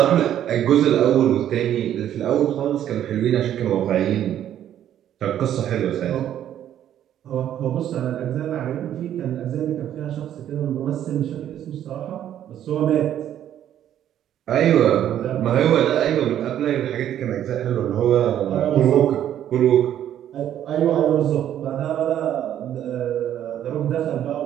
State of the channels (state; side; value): quieter; left; 10.9 dB